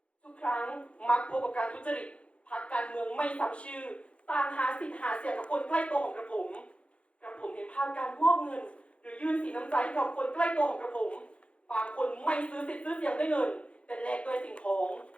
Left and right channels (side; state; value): right; late; 0.061 ms